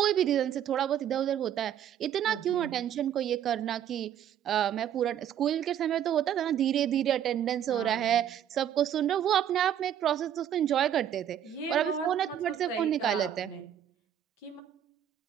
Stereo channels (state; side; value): quieter; left; 10.0 dB